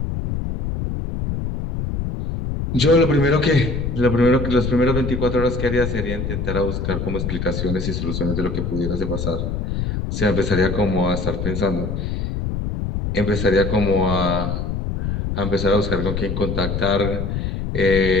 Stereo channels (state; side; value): noise; left; rumble, 3 dB below the sound